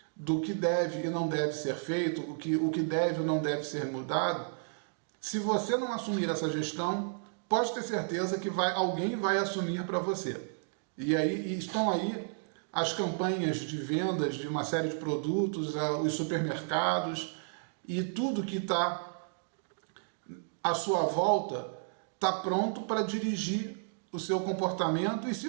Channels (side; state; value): left; silent; digital silence